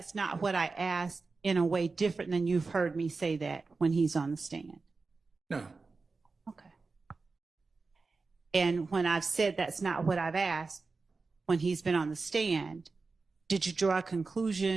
not what I asked in a way different than you've heard me say that when he's on the stand? No. Okay. And when I've said that's not what I've asked when he's been on the stand, did you draw a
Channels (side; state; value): left; quieter; 4.1 dB